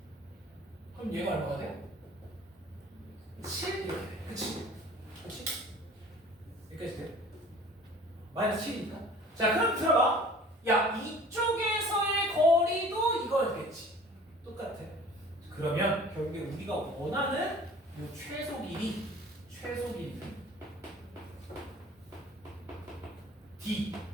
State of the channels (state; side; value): normal; both; correlation 0.47